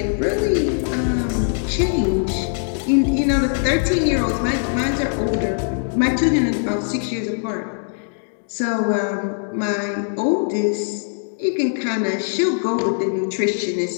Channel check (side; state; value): right; silent; digital silence